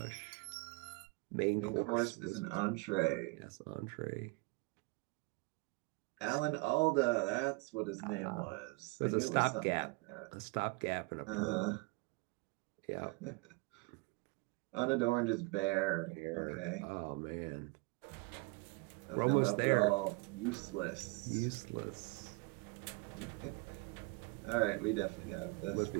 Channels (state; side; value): quieter; left; 27.3 dB